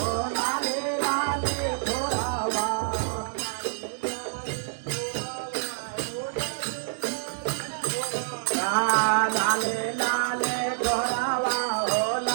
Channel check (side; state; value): left; silent; 60 dB below the other